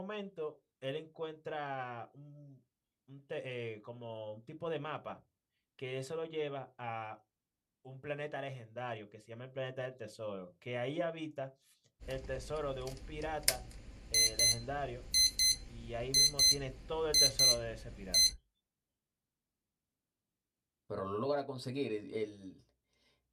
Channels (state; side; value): identical; both; correlation 1.00